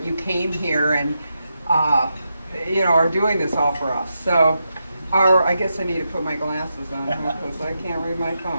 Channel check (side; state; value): both; inverted; correlation -0.86